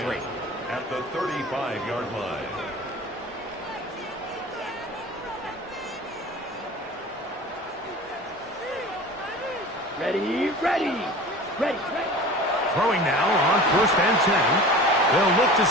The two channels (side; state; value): both; normal; correlation 0.38